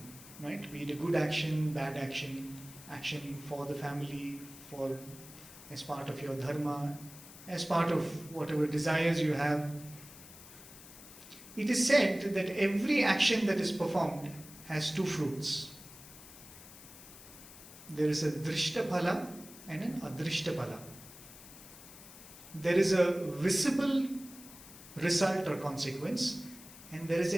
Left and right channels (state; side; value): noise; left; hiss, 17 dB below the sound